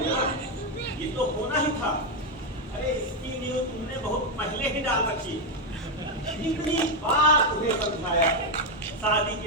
ये तो होना ही था। अरे इसकी न्यूज़ तुमने बहुत पहले ही डाल रखी। इतनी बार तुम्हें समझाया, शादी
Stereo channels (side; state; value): both; normal; correlation 0.04